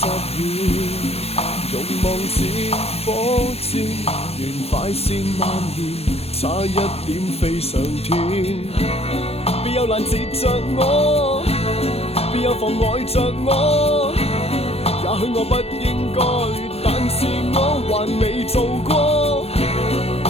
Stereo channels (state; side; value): late; right; 0.29 ms